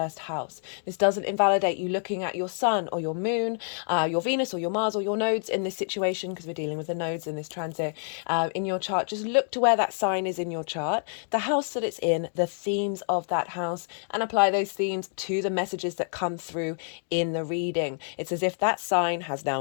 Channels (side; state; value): right; silent; digital silence